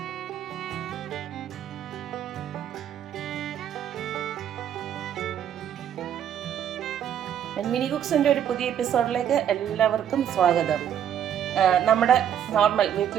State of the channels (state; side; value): quieter; left; 9.7 dB